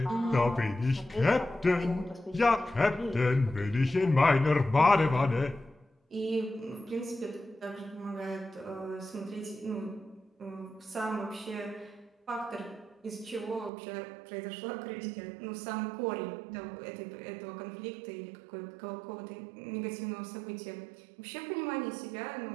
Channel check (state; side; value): drops out; left; at 13.7 s